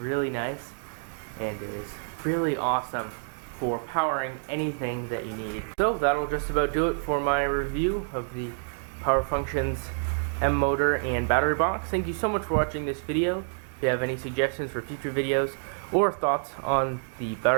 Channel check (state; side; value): silent; left; digital silence